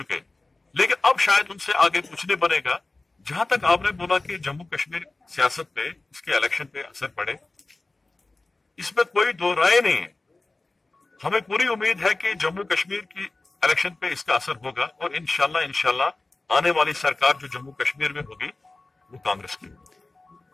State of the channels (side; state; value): right; quieter; 3.2 dB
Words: लेकिन अब शायद उनसे आगे कुछ नहीं बनेगा। जहां तक आपने बोला कि जम्मू कश्मीर सियासत पे, इसके इलेक्शन पे असर पड़े, इसमें कोई दो राय नहीं है। हमें पूरी उम्मीद है कि जम्मू कश्मीर की इलेक्शन पे इसका असर होगा, और इंशाल्लाह आने वाली सरकार जो जम्मू कश्मीर में होगी वो कांग्रेस की होगी।